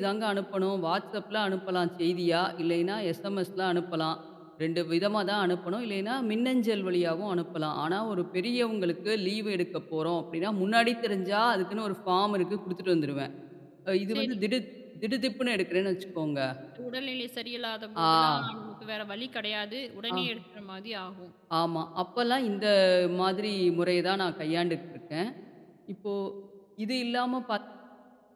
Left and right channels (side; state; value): both; identical; correlation 1.00